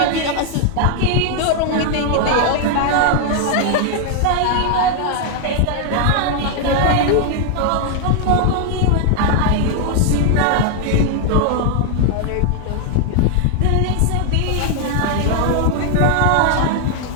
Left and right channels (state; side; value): different; both; correlation 0.00